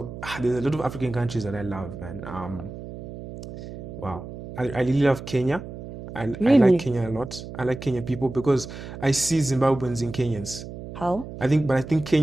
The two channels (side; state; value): right; noise; hum, 11 dB below the sound